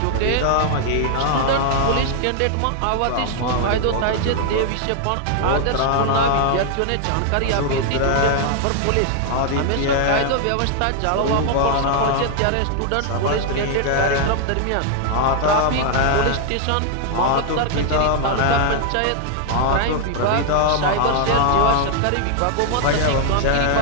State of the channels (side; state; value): both; different; correlation 0.00